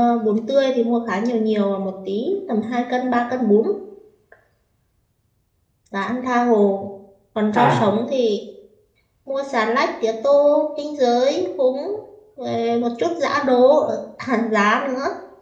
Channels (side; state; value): both; identical; correlation 1.00